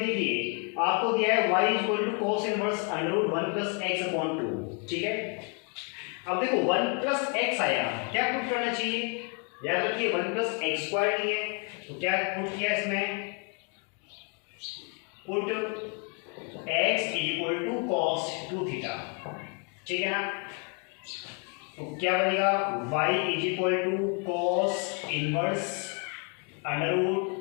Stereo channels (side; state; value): right; quieter; 37.1 dB